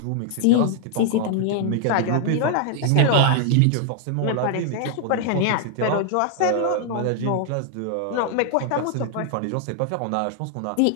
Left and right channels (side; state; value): both; different; correlation 0.00